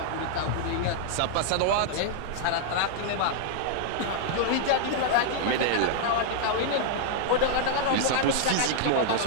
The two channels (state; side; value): different; both; correlation -0.01